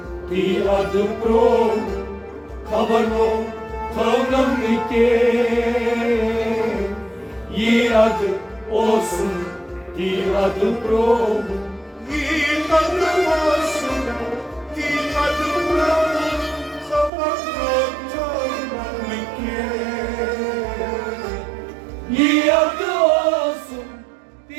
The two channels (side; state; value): left; drops out; at 17.1 s